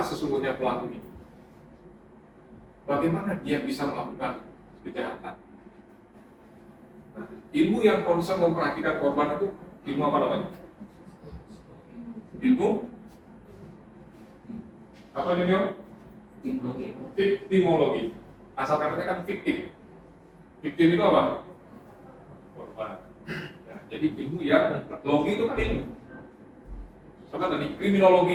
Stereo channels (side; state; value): both; identical; correlation 1.00